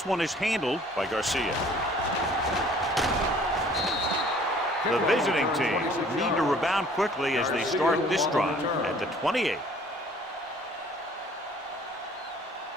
one is handled by Garcia. The visiting team need to rebound quickly as they start this drive at the 28.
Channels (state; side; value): normal; both; correlation 0.54